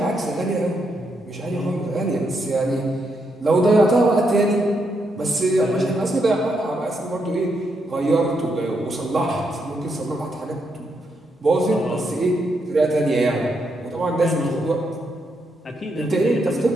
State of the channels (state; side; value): normal; both; correlation 0.80